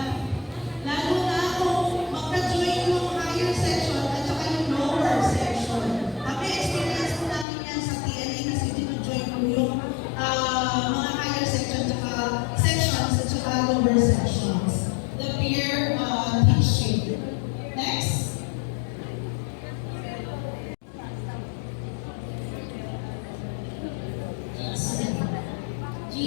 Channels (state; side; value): drops out; right; at 7.5 s